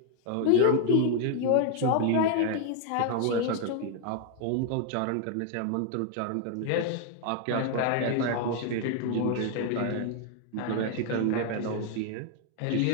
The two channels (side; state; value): both; different; correlation 0.01